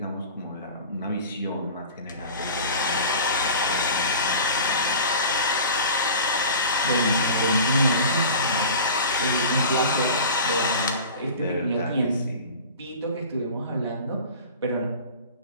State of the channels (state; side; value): inverted; both; correlation -0.38